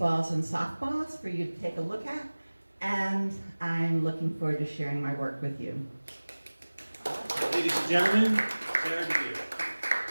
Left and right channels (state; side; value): inverted; both; correlation -1.00